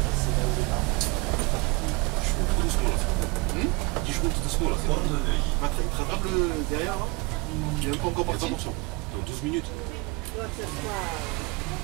Je roule tout doucement là. Dis, je roule tout doucement là. C'est bon. Il te rattrape derrière là. Il est même pas encore parti. Dans 12 minutes.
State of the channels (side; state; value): left; quieter; 26.0 dB